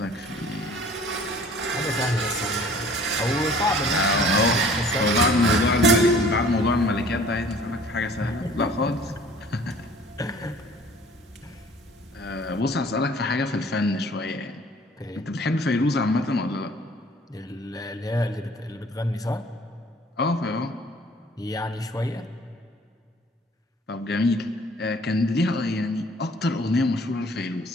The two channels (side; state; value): both; normal; correlation 0.52